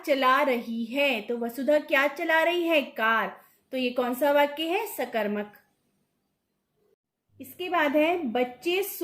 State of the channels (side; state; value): both; identical; correlation 1.00